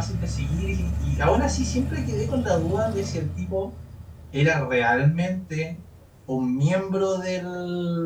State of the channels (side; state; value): both; identical; correlation 1.00